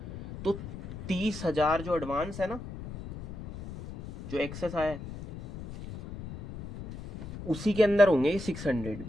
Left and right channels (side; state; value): left; noise; rumble, 11 dB below the sound